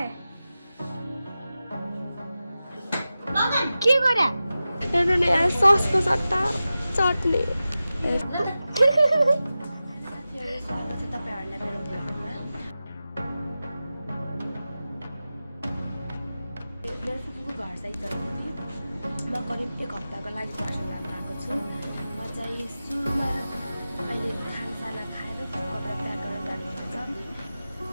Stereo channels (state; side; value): inverted; both; correlation -0.94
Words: के गरे हेर्नु नि यहाँ ससको सट्टा चट्नी। स्वागत छ तपाईहरुलाई मेरो भ्लगमा। मेरो फुपूको घर साइड गएको थिएँ। म करिब 1 हप्ताको लागि पर्सन जान गएको छु। म चाहिँ सुरुमा अहिले खानसाना खाएर कपडा प्याक गरेर जानुपर्छ।